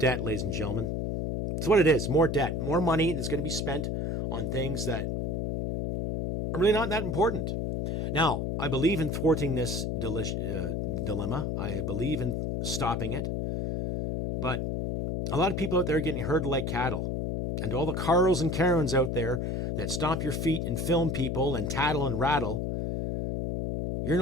ladies and gentlemen. It's what it is. More debt. More money that's going to be spent on things that are really not that important. Now, I believe in thwarting this dilemma. I believe in stopping it. But a lot of people out there are getting herded like cattle. And all the Carls and Karens out there that stomp your feet and film people and tattle and rattle, you're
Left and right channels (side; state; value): left; noise; hum, 1 dB below the sound